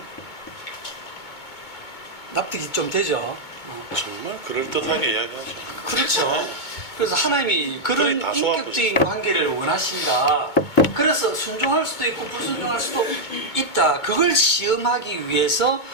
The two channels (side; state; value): right; late; 2.2 ms